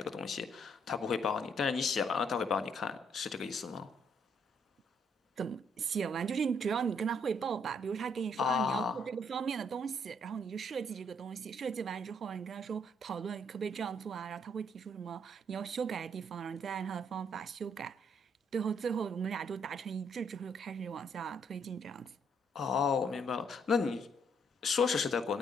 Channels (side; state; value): both; normal; correlation 0.70